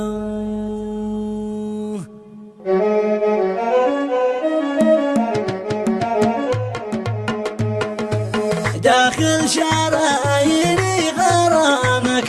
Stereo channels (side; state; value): both; identical; correlation 1.00